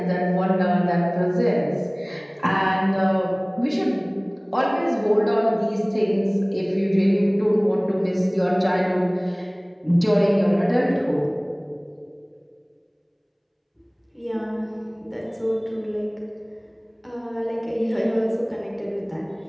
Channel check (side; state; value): both; identical; correlation 1.00